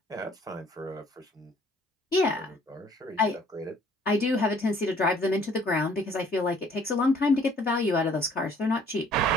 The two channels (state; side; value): normal; both; correlation 0.58